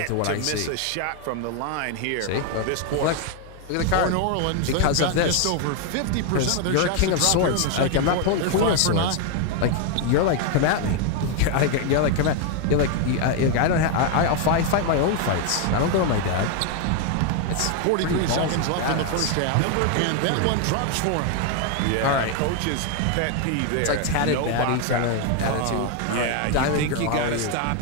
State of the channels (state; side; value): different; both; correlation 0.01